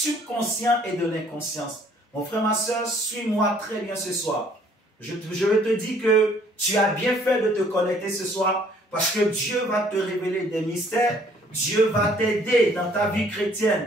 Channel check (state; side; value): normal; both; correlation 0.60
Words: et de l'inconscience. Mon frère, ma soeur, suis-moi très bien ce soir. Je te dis que tu as bien fait de te connecter ce soir parce que Dieu va te révéler des mystères, Dieu va t'aider dans ta vie